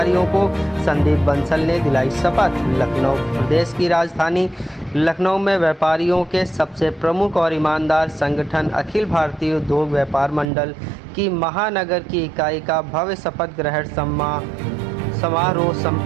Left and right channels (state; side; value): drops out; left; at 10.5 s